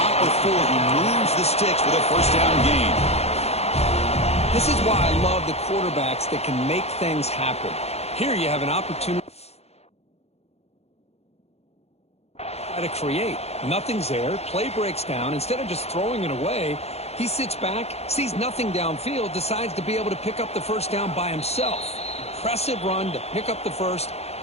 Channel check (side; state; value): right; late; 0.30 ms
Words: before he moves the sticks with a first down gain. This is why I love the quarterbacks that can make things happen. Here you have an opportunity to create. Nothing's there. Play breaks down. Instead of just throwing it away, he sits back, sees nothing downfield, decides to be able to pick up the first down by himself. Impressive run to pick up the first